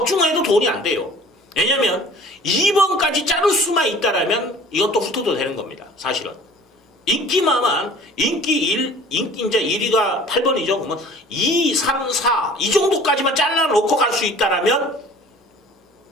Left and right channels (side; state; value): both; normal; correlation 0.47